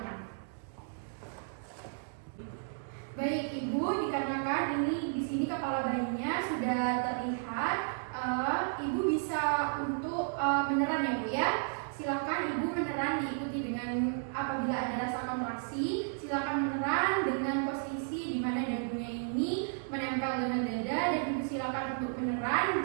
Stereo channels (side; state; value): left; silent; digital silence